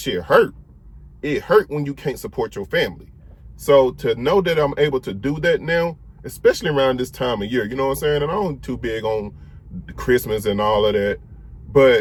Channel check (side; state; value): both; identical; correlation 1.00